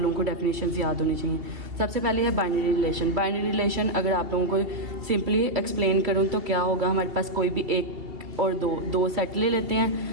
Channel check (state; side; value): late; left; 2.7 ms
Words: को डेफिनेशन याद होनी चाहिए। सबसे पहले है बाइनरी रिलेशन। बाइनरी रिलेशन अगर आप लोगों को सिंपली एक्सप्लेन करूँ तो क्या होगा, हमारे पास कोई भी एक और दो सेट ले लेते